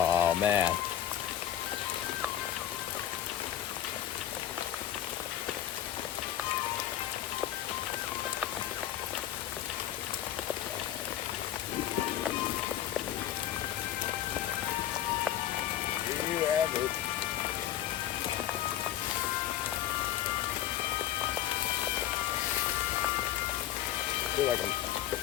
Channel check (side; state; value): right; quieter; 11.8 dB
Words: man. Here you have it. I feel like